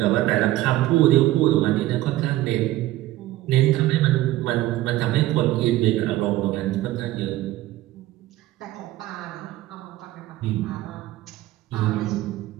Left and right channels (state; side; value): quieter; left; 15.9 dB